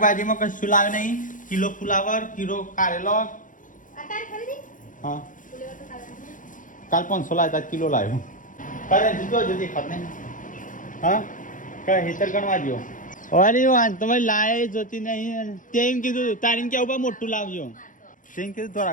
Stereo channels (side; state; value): right; late; 0.38 ms